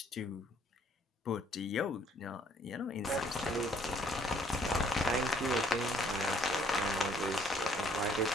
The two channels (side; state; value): both; normal; correlation 0.63